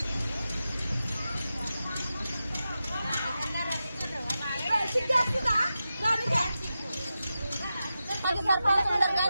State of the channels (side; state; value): both; inverted; correlation -0.91